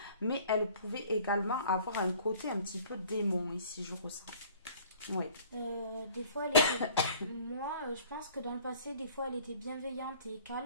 mais elle pouvait également avoir un côté un petit peu démon ici, je ressens. Oui. Des fois, elle était... Moi, je pense que dans le passé, des fois, elle était bienveillante et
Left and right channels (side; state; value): both; inverted; correlation -0.52